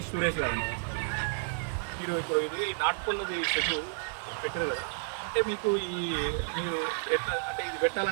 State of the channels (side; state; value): left; silent; 57 dB below the other